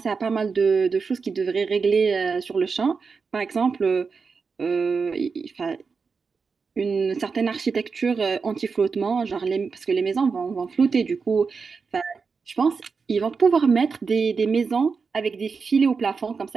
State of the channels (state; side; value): quieter; left; 5.1 dB